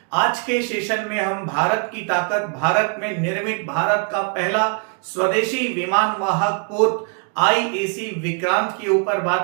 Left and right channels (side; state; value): left; quieter; 39.5 dB